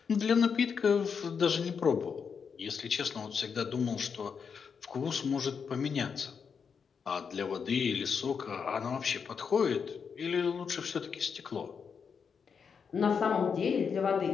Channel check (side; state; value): right; quieter; 6.3 dB